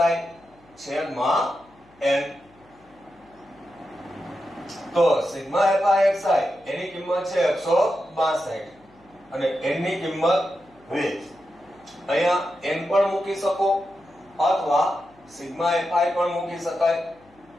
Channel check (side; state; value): left; noise; hum, 29 dB below the sound